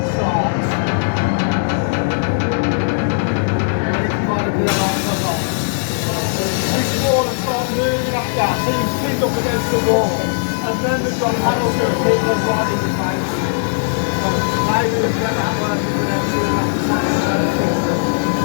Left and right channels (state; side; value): silent; right; digital silence